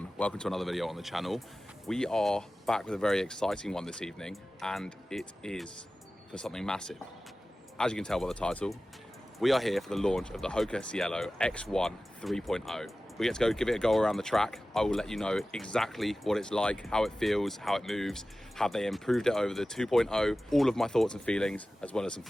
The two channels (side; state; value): both; normal; correlation 0.96